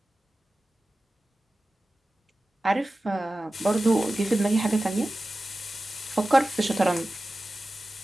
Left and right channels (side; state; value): both; normal; correlation 0.95